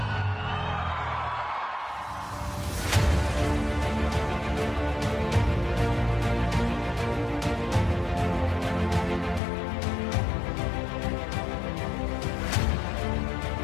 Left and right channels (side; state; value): right; drops out; at 9.4 s